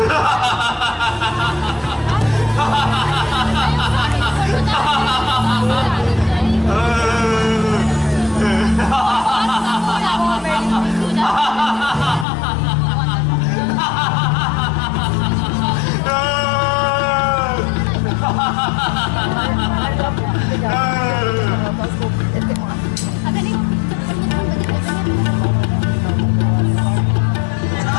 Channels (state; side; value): drops out; right; at 12.2 s